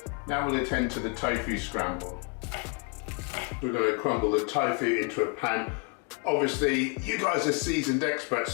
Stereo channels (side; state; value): right; quieter; 30.9 dB